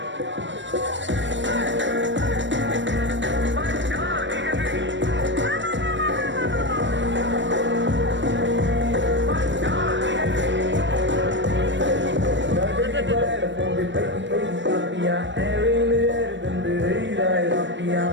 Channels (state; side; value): late; left; 0.54 ms